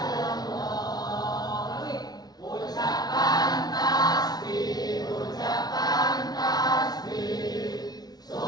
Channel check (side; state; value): right; late; 0.19 ms